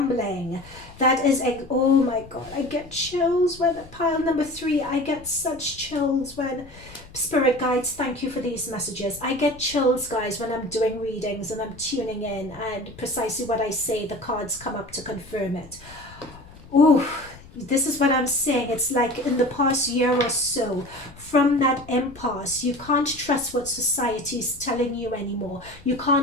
That is a, oh my God, I get chills when pile number 3. I get such chills when spirit guides, thank you for these messages. I get chills, guys, when I'm doing readings and I'm tuning in, and precisely what I say, the cards come up to confirm it. Ooh, this is what I'm saying. It's like in the past year or so, from that impasse, you can't trust what society is telling you anymore. You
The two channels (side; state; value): left; noise; rumble, 21 dB below the sound